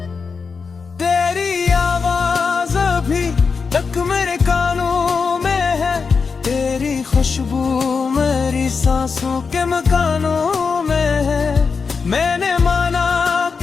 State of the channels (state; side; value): quieter; right; 5.2 dB